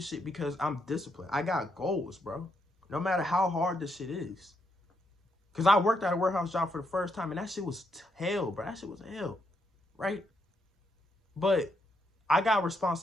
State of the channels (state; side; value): normal; both; correlation 0.78